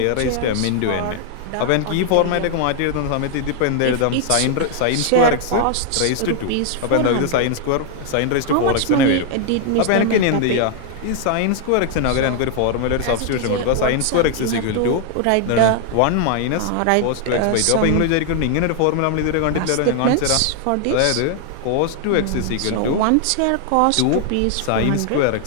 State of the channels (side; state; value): both; different; correlation 0.00